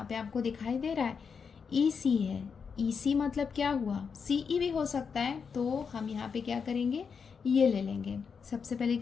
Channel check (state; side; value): quieter; right; 6.0 dB